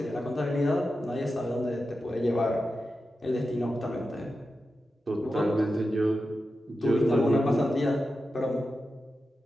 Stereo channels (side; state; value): both; normal; correlation 0.91